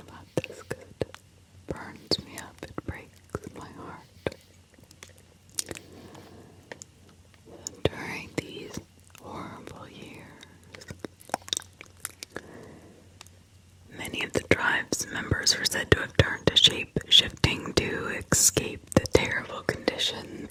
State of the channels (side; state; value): both; identical; correlation 1.00